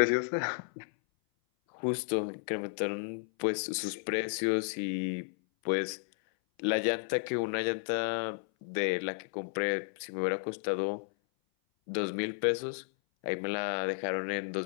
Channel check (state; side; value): silent; right; 56 dB below the other